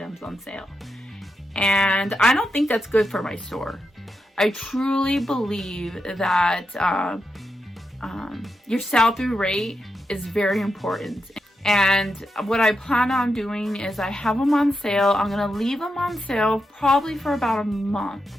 on sale. And I don't think that's good for my store. I truly believe that your sell-through rate is very important. And what I plan on doing is I have them on sale. I'm going to leave them on sale probably for about a month.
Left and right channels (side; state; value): both; normal; correlation 0.86